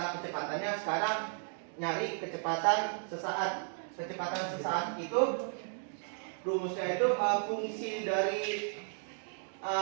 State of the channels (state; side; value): silent; left; 55 dB below the other